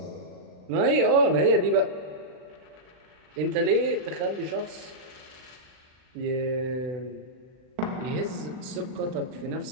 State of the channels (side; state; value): left; late; 39 ms